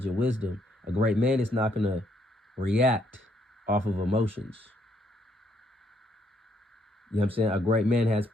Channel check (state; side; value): normal; both; correlation 0.71